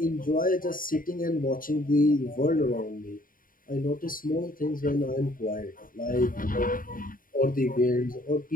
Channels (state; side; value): late; right; 0.40 ms